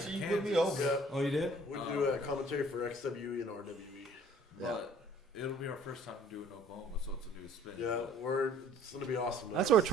sure you in put me Kansas, over. Yeah, Oh, you did? we do a commentary for XWE and RWE. But it'll be our first time to do it in Oklahoma, so it's a new spin. Yeah, it's gonna be awesome. That's what we're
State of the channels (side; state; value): both; normal; correlation 0.55